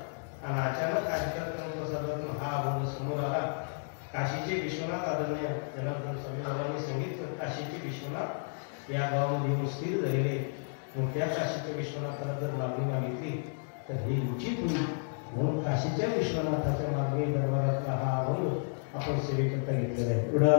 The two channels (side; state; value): right; silent; digital silence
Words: आणि अचानक कार्यक्रम प्रसादातून हा अभंग समोर आला. काशीचे विश्वनाथ आदरणीय जनार्दन स्वामी बाबांनी सांगितलं, काशीचे विश्वनाथ या गावामध्ये येऊन स्थिर झालेले. मग त्या काशीच्या विश्वनाथाला जर मागणी मागितली तर हे उचित होईल. म्हणून काशीच्या विश्वनाथाच्या मागणी दरबारातला हा अभंग आपण सेवेकरता घेतलेला आहे.